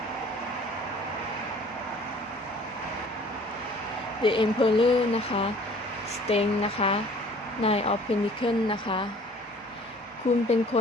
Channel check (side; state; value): both; normal; correlation 0.52